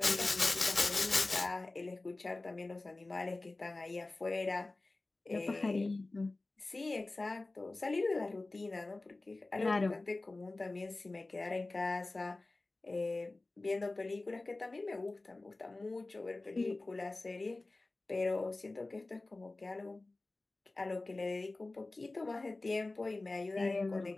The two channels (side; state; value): right; quieter; 3.1 dB